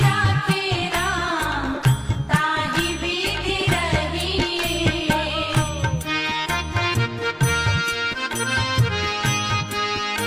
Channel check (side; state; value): both; identical; correlation 1.00